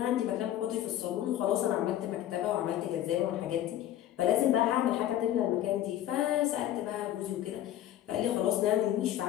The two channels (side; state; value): right; quieter; 12.4 dB